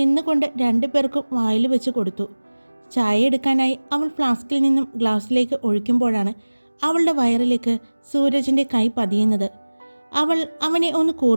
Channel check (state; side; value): inverted; both; correlation -1.00